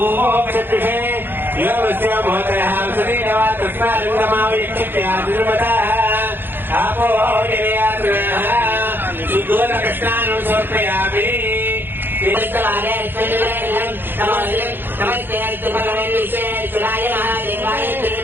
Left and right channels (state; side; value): late; left; 0.099 ms